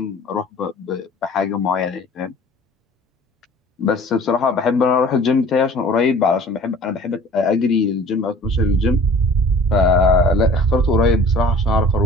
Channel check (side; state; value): both; normal; correlation 0.46